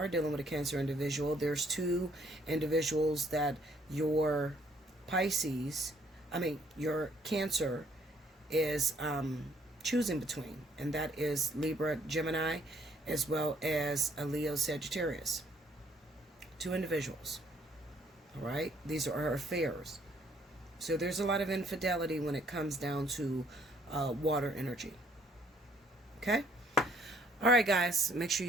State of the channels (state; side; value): normal; both; correlation 0.64